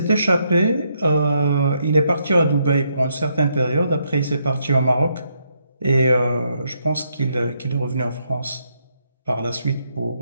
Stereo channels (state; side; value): inverted; both; correlation -0.76